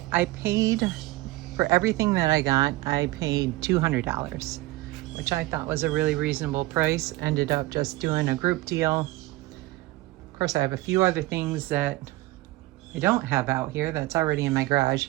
paid for everything that I got. I paid $200, which I thought was a really reasonable price. Ended up just doing a group deal. Of course, I have a few other things that I don't have out here that's already in my garage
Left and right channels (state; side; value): quieter; left; 18.6 dB